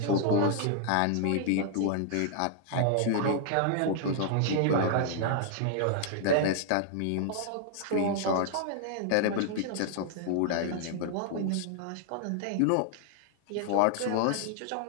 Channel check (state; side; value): different; both; correlation -0.01